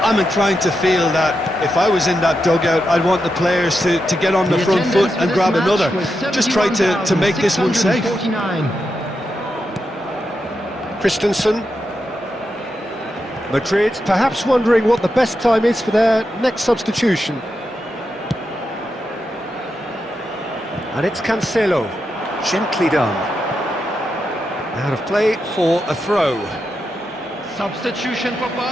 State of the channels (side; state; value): both; normal; correlation 0.86